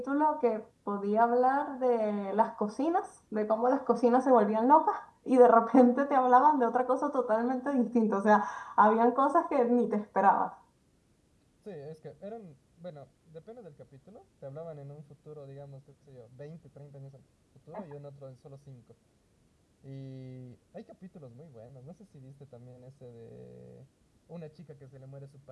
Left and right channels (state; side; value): identical; both; correlation 1.00